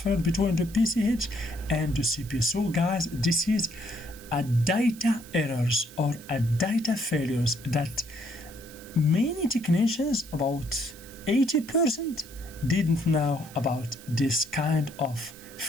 between the PCH and the CPU. So guys, this is a data errors or a data failures that many technicians, about 80%, didn't know about this kind of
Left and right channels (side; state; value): right; noise; hiss, 19 dB below the sound